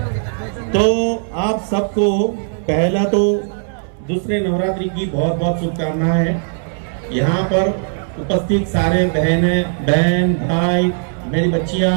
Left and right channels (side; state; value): left; silent; 67 dB below the other